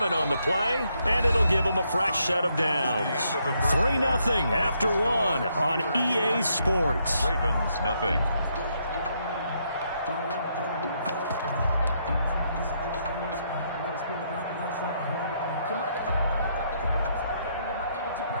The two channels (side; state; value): both; inverted; correlation -0.75